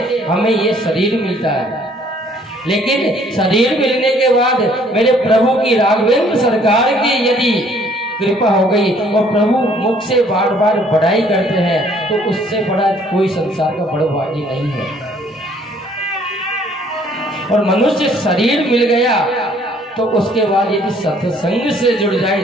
हमें ये शरीर मिलता है, लेकिन शरीर मिलने के बाद मेरे प्रभु की राघवेंद्र सरकार की यदि कृपा हो गई और प्रभु मुख से बार बार बड़ाई करते हैं, तो उससे बड़ा कोई संसार का बड़ा भागी नहीं है। और मनुष्य शरीर मिल गया तो उसके बाद यदि सत्संग से जुड़ जाए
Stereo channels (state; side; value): normal; both; correlation 0.61